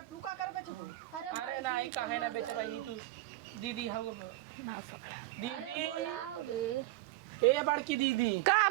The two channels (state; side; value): quieter; left; 17.7 dB